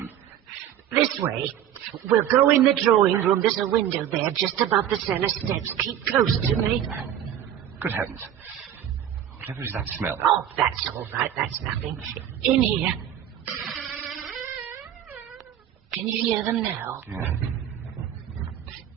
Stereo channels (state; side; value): quieter; left; 10.5 dB